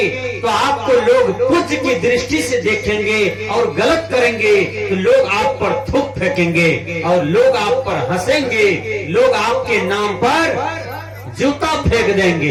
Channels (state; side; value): identical; both; correlation 1.00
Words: तो आपको लोग पूज्य की दृष्टि से देखेंगे, और गलत करेंगे तो लोग आप पर थूक फेंकेंगे, और लोग आप पर हंसेंगे, लोग आपके नाम पर जूता फेंक